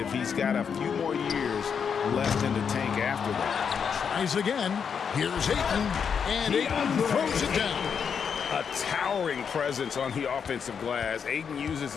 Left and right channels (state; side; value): quieter; right; 6.8 dB